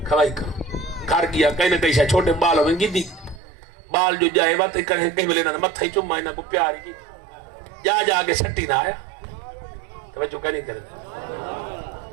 खवाई करो घर गया कहीं ना कहीं छोटे बाल हो गिद्दी बाल जो जाए बात कहीं मिले ना मत्था ही चुम्मा इन्हें को प्यार की जा जाके सट्टी ना आया तो जो कहीं नहीं करते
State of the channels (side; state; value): left; drops out; at 3.4 s